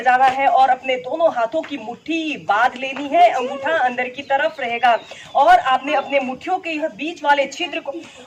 जाना है और अपने दोनों हाथों की मुट्ठी बांध लेनी है। अंगूठा अंदर की तरफ रहेगा और आपने अपने मुट्ठियों के बीच वाले छिद्र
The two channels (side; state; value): both; identical; correlation 1.00